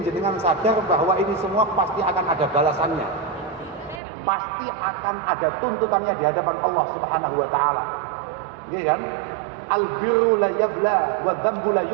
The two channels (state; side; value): drops out; left; at 4.0 s